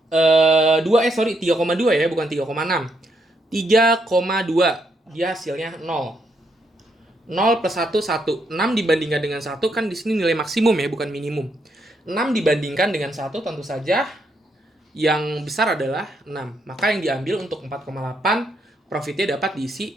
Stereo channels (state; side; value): normal; both; correlation 0.77